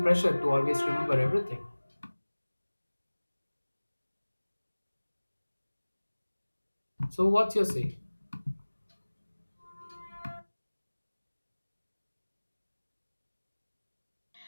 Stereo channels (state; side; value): inverted; both; correlation -1.00